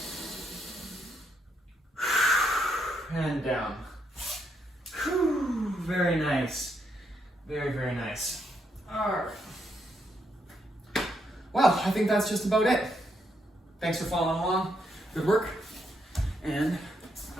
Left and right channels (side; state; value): both; normal; correlation 0.78